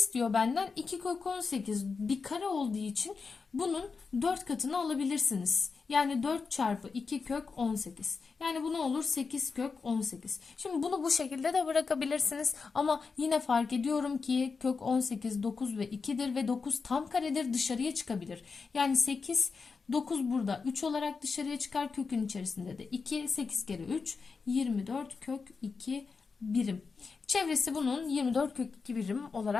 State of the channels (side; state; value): right; quieter; 4.9 dB